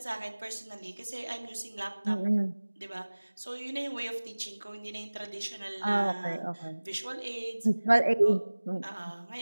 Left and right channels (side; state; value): both; inverted; correlation -1.00